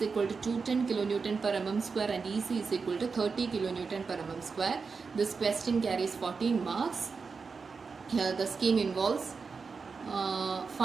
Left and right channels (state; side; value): quieter; left; 5.0 dB